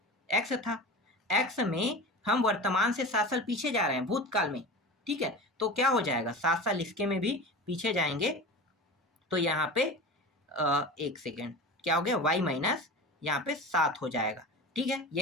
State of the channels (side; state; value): both; normal; correlation 0.32